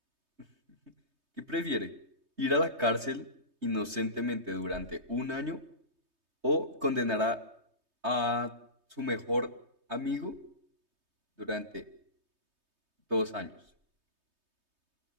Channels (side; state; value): left; late; 3.2 ms